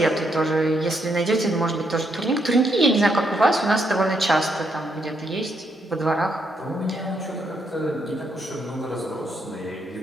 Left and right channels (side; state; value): both; normal; correlation 0.77